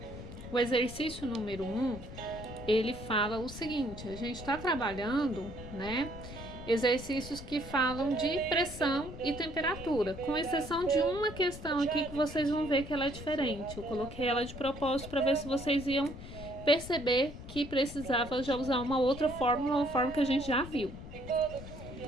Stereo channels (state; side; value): noise; left; rumble, 12 dB below the sound